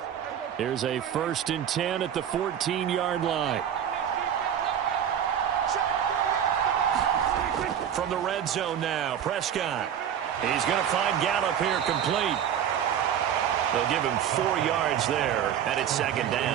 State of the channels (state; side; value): quieter; left; 9.3 dB